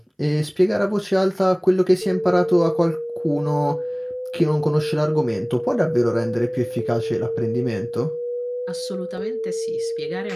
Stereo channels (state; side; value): identical; both; correlation 1.00